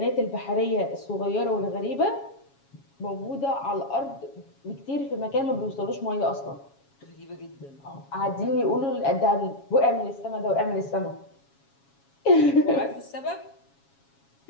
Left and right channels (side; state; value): right; late; 7.2 ms